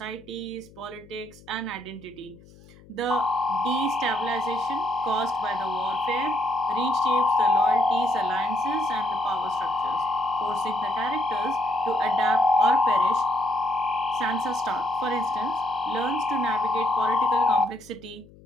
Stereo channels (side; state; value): left; noise; hum, 24 dB below the sound